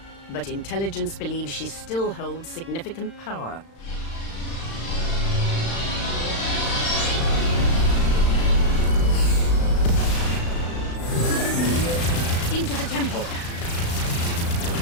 but intelligence believes she still holds significant power. Into the temple!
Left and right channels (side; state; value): right; late; 35 ms